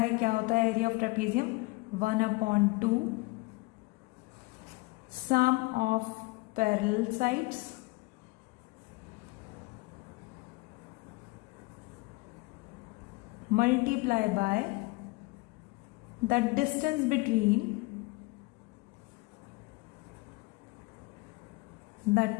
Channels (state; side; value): quieter; right; 24.1 dB